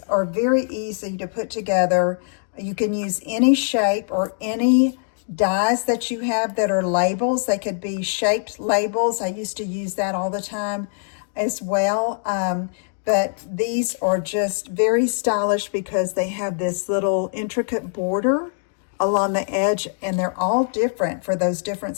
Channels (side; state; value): right; silent; digital silence